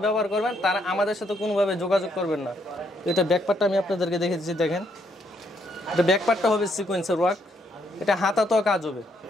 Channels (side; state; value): both; normal; correlation 0.73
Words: ব্যবহার করবেন তারা আমাদের সাথে কোনোভাবে যোগাযোগ করবেন না। এটা ব্যাকপার্টটা আমি আপনাদেরকে দেখে দিচ্ছি, দেখেন এটা ব্যাকপার্টটা হবে সিকোয়েন্সের ওয়ার্ক, এটা হাতাতেও কাজ হবে,